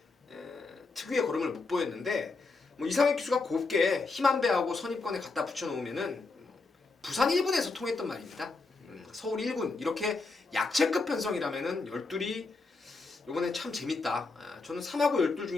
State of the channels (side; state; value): right; quieter; 3.8 dB